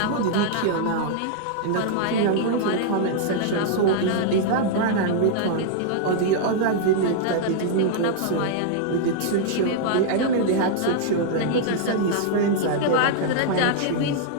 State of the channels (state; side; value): different; both; correlation -0.01